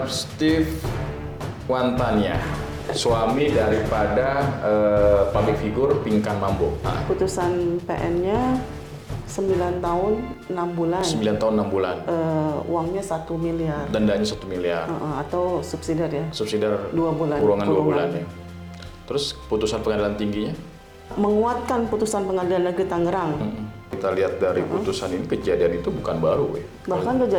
Steve Wantania, suami daripada public figure Pinkan Mambo. Putusan PN-nya 9 tahun 6 bulan. 9 tahun 6 bulan. Uangnya 1 miliar. Dendanya 1 miliar. Atau subsidiar ya. Subsidiar 2 bulan. Kurungan 2 bulan ya. Terus putusan pengadilan tingginya? Menguatkan putusan pengadilan negeri Tangerang. Kita lihat dari putusan ini, kejadian itu bukan baru ya. Bahkan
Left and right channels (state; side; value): identical; both; correlation 1.00